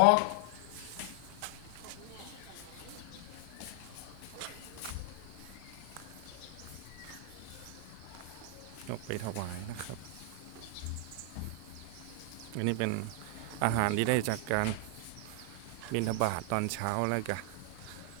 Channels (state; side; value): different; both; correlation 0.00